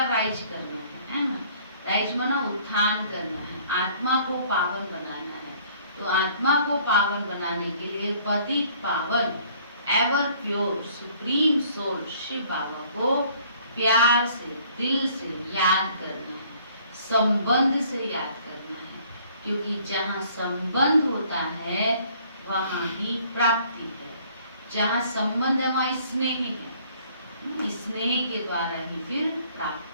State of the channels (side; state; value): both; inverted; correlation -0.58